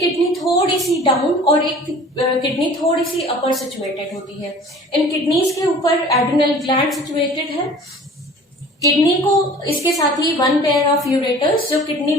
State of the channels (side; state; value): both; normal; correlation 0.46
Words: थोड़ी सी डाउन और एक किडनी थोड़ी सी अपर सिचुएटेड होती है. इन किडनीज के ऊपर एड्रिनल ग्लैंड सिचुएटेड है. किडनी को इसके साथ ही 1 पेयर ऑफ यूरेटर्स जो किडनी